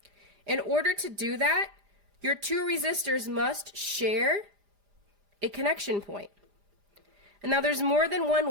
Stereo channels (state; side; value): late; left; 4.9 ms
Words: In order to do that, your 2 resistors must share a connection point. And now there's more than one